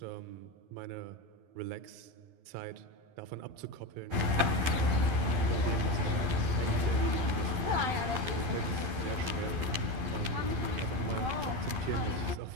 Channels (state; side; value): late; left; 12 ms